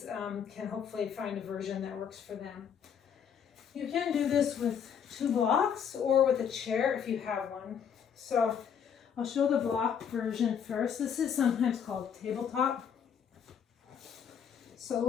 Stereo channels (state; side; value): quieter; right; 7.7 dB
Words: can hopefully find a version that works for them. You can do this with 2 blocks or with a chair if you have one. So I'll show the block version first. This is sometimes called tabletop. So